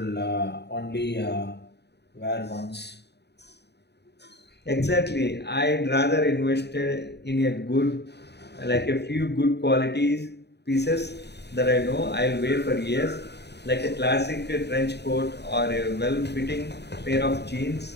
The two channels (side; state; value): right; late; 0.49 ms